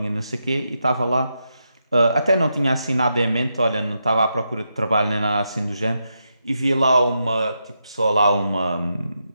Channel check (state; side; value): inverted; both; correlation -0.84